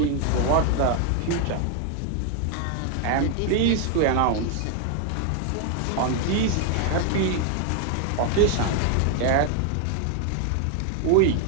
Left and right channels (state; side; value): different; both; correlation 0.01